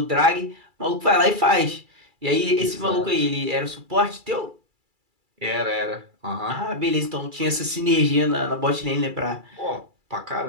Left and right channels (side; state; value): left; late; 2.3 ms